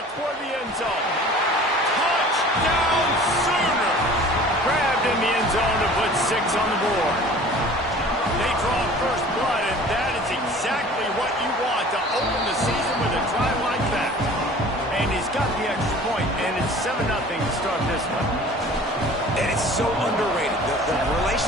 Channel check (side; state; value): both; normal; correlation 0.45